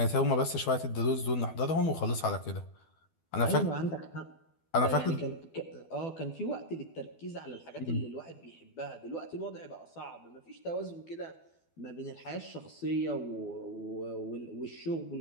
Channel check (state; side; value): late; right; 12 ms